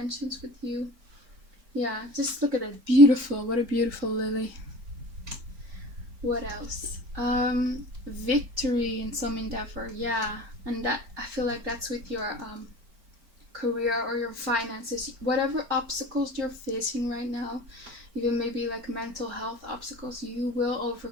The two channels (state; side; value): late; left; 4.4 ms